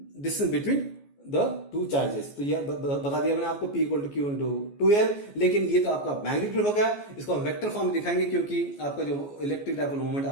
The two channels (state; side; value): late; right; 14 ms